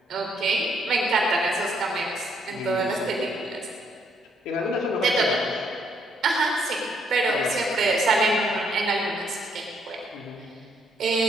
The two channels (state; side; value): normal; both; correlation 0.71